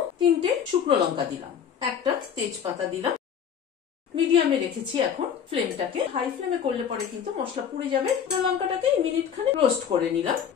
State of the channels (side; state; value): right; quieter; 8.0 dB